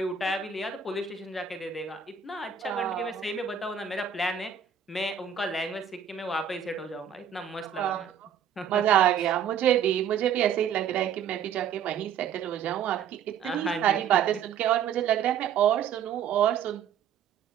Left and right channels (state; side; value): quieter; left; 8.1 dB